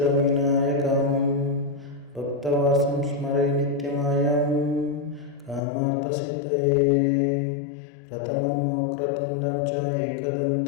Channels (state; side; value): drops out; right; at 5.6 s